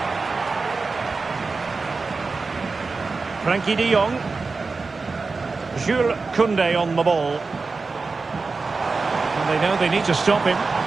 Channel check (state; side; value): quieter; left; 4.1 dB